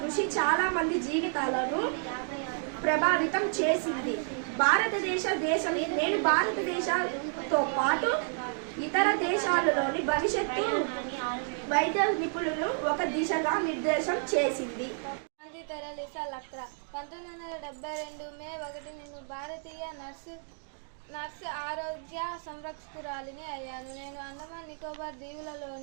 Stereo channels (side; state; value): left; silent; 57 dB below the other